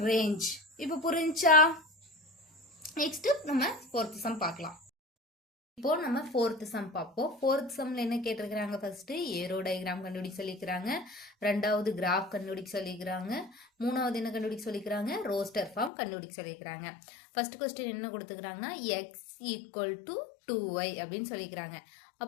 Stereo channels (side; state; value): right; drops out; at 15.9 s